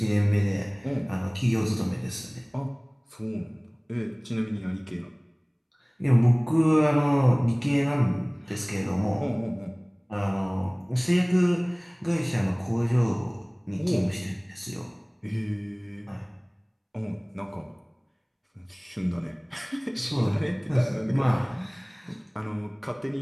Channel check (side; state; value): both; identical; correlation 1.00